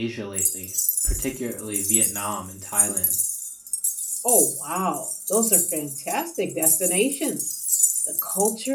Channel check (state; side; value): identical; both; correlation 1.00